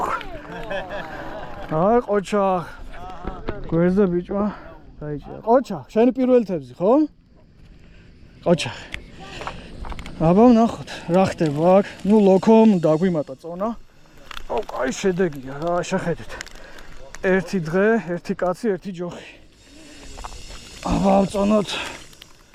აი ყოჩა. გვერდზე ბიჭმა დაიჭირა. ყოჩა, შენი პირველი თევზი, ხო? ყოჩა. აბა ვნახოთ, რა ხდება აქ. ნუ ლოქომ დაგვიმატა წონა. აუ, კაი შედეგია რა, შეხედეთ. ერთი დღე, ერთი კაცი, ერთი ჯოხი. აბა ავწონოთ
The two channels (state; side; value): identical; both; correlation 1.00